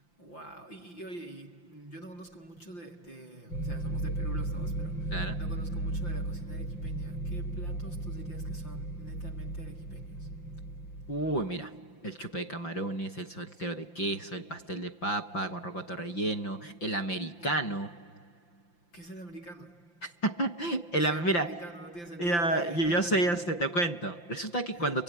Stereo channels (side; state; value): right; late; 5.8 ms